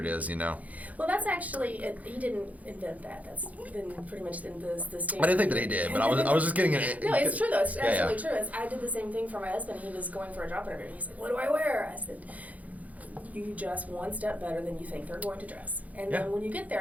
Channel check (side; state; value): left; late; 0.073 ms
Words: it is, Well, that's actually, he didn't invent that. That's been pretty much the standard. I didn't think that he did, but I was just getting it. No, it's true though. It's absolutely true. I did the same thing for my husband. He was going for a job interview. He said, "What do I wear?" I said, "You dress one step better than you think they're going to dress." And then when you get